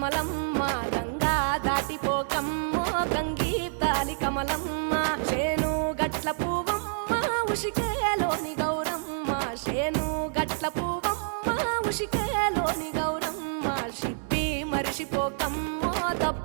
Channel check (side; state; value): left; silent; 60 dB below the other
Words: గంగా దాటిపోకమ్మో గంగీ తాలి కమలమ్మ చేను గట్ల పువ్వమ్మ ఉషికేలోని గౌరమ్మ చేను గట్ల పువ్వమ్మ ఉషికేలోని గౌరమ్మ షిప్పి మరిషిపోకమ్మో